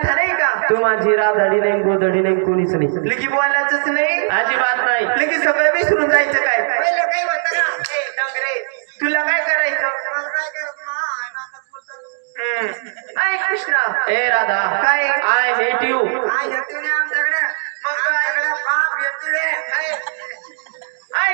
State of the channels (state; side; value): silent; left; digital silence